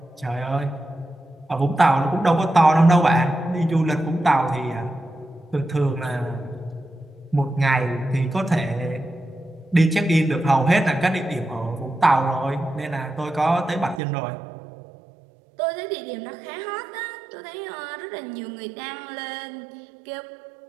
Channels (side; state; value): left; drops out; at 14.0 s